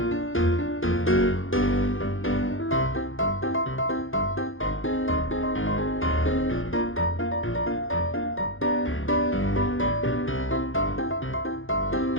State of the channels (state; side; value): late; right; 0.58 ms